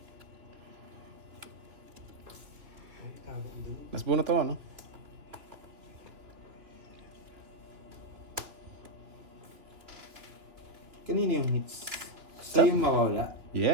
Ay, tago ko dun. Mas bunot ako, no? Kanino yung hits? Sa'yo yung mawawala?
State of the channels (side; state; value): left; late; 3.0 ms